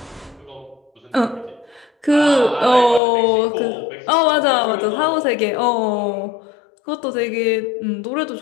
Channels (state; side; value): drops out; right; at 3.0 s